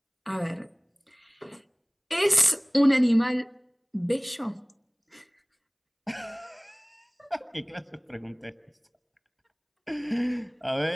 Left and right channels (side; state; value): both; identical; correlation 1.00